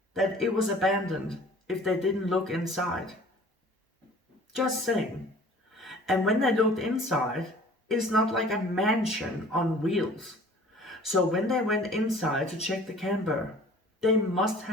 that it was abandoned if they didn't look inside? Just saying. And when they looked inside, it's not like a mansion on wheels. So when they went inside to check the camper, they must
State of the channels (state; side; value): normal; both; correlation 0.48